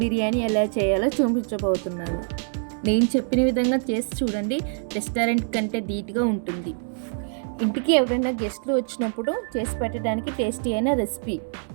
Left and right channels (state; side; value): silent; left; digital silence